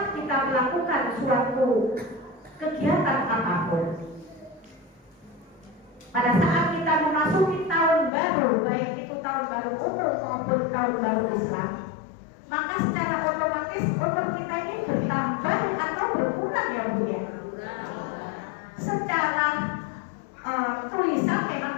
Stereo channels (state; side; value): drops out; right; at 8.1 s